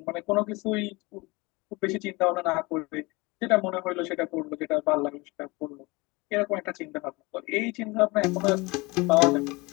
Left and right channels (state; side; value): quieter; right; 24.5 dB